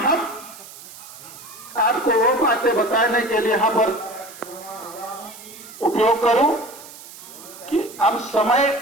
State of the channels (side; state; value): right; noise; hiss, 17 dB below the sound